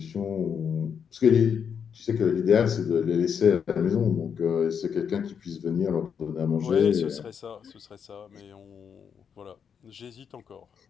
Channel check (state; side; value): quieter; right; 7.2 dB